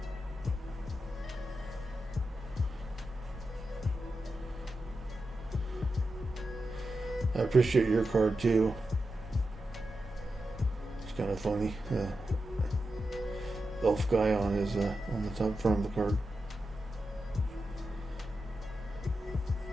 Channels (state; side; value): normal; both; correlation 0.90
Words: I appreciate your card too. It's kind of funny. Elf guy on his on the top front of the card.